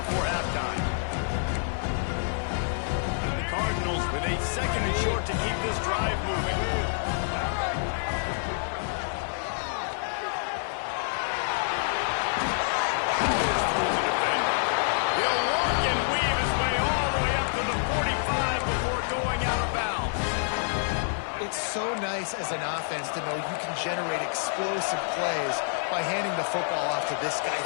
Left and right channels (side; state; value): right; silent; 60 dB below the other